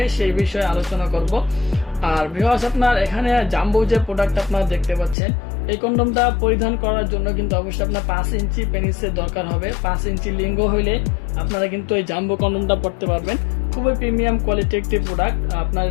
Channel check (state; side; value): drops out; right; at 5.2 s